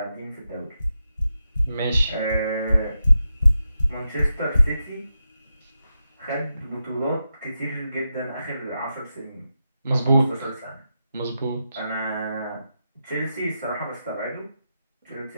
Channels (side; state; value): both; inverted; correlation -0.88